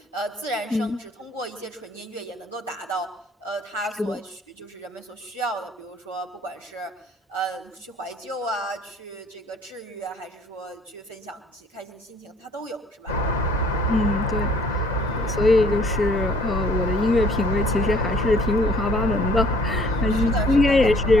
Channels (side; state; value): both; normal; correlation 0.58